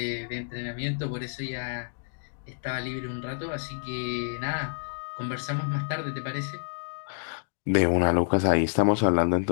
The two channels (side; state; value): right; silent; digital silence